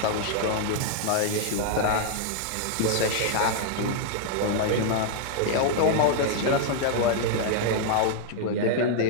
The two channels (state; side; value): different; both; correlation -0.01